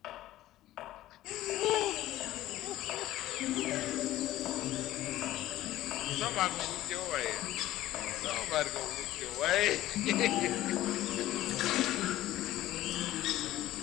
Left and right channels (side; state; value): right; quieter; 14.9 dB